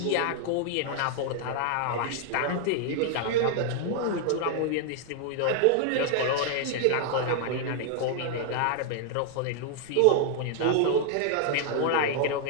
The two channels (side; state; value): both; different; correlation 0.00